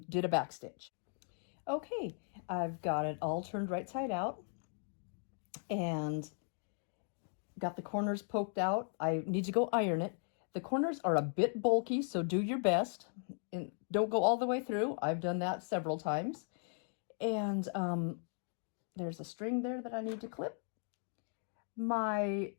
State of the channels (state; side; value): silent; right; 53 dB below the other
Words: did a back stitch. Okay, I've got it all turned right side out, and got the corners poked out. I need to go iron it. The corners are a bit bulky, so do your best. And don't go all the way through. I've done that several times. And there's a string there that I need to clip. My